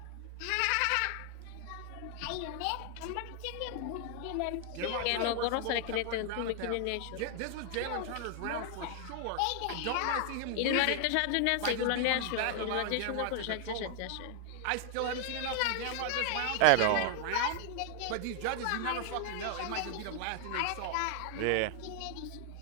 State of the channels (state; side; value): different; both; correlation 0.00